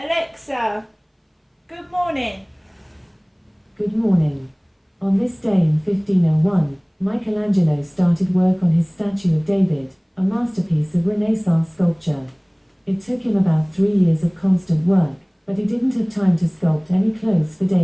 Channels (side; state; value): both; identical; correlation 1.00